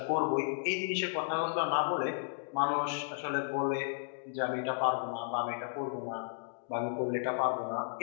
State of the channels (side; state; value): right; silent; digital silence